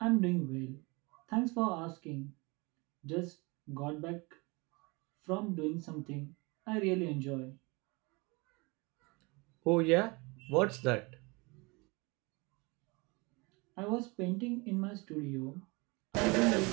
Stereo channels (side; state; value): left; quieter; 27.0 dB